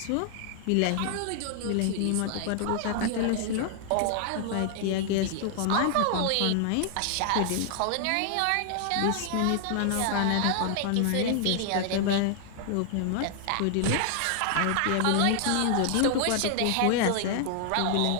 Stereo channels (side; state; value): both; different; correlation 0.00